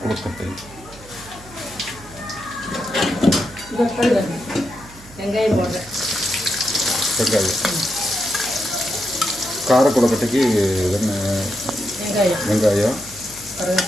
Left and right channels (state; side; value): noise; right; hum, 20 dB below the sound